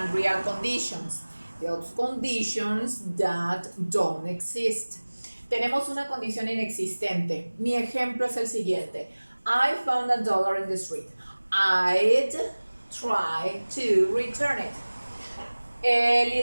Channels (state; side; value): inverted; both; correlation -1.00